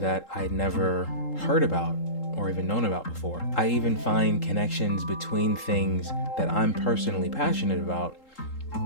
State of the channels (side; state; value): right; late; 3.8 ms